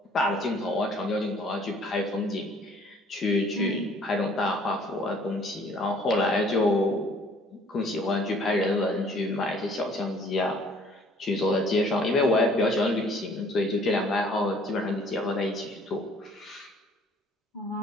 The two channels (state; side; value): normal; both; correlation 0.57